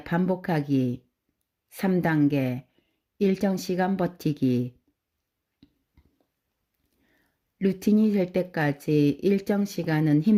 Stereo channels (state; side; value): identical; both; correlation 1.00